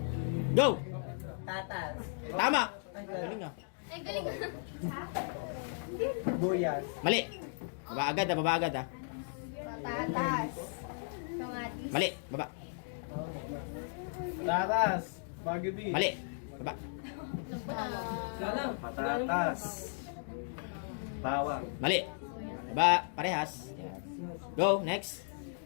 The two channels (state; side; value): silent; right; digital silence